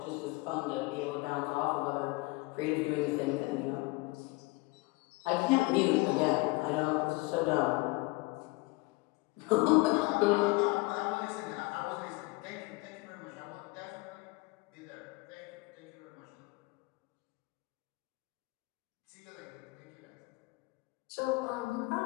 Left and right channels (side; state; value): right; quieter; 24.3 dB